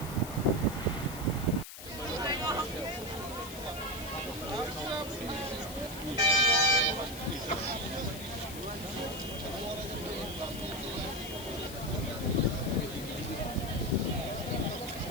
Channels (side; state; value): left; noise; hiss, 12 dB below the sound